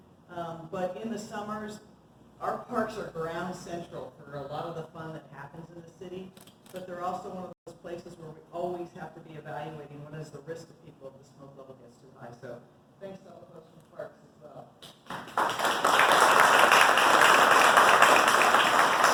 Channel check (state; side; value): identical; both; correlation 1.00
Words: but in the summers, our parks are ground central for a lot of the fun that happens in the city, but they're also one of those places where we always have to be evaluating what is the risk to people if the smoke level gets too high. So thanks to all the folks from Parks as well.